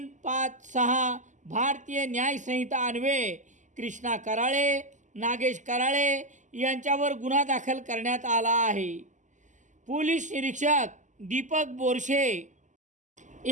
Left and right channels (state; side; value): late; left; 0.36 ms